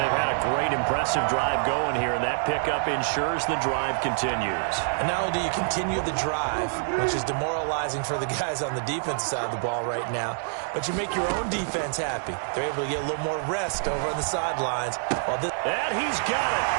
had a great, impressive drive going here, and that pickup ensures the drive continues. And not only do you continue the drive, which is demoralizing for the guys on the defensive side of the ball right now, but you make your own defense happy. They're able to get a little more rest over on the sidelines. And he's got it.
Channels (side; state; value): left; silent; digital silence